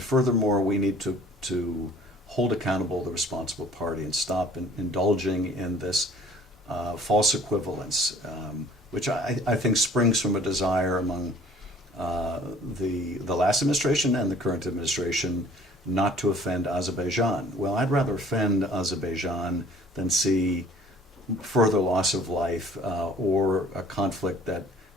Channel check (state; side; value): normal; both; correlation 0.53